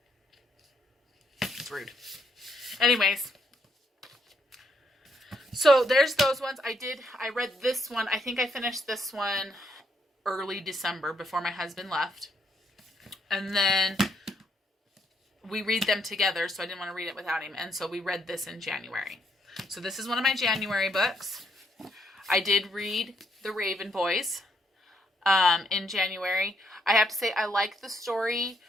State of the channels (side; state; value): both; normal; correlation 0.74